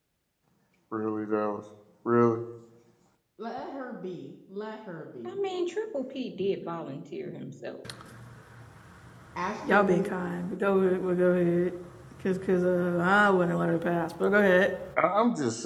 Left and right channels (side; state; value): both; identical; correlation 1.00